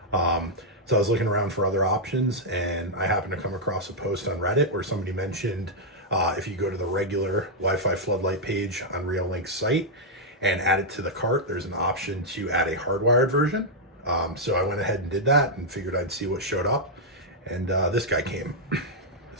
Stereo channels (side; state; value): both; normal; correlation -0.04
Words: So I was looking around for other options, and I happened to come across a post on Reddit where somebody mentioned if you go to the regular Wi-Fi Floodlight page on Reolink's site and add it to the cart, there's an option to add a hardwired version. So I went ahead and did that and figured I'd see what showed up, and this guy came.